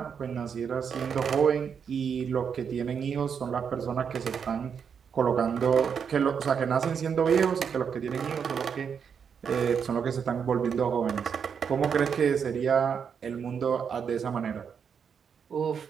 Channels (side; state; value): left; quieter; 6.9 dB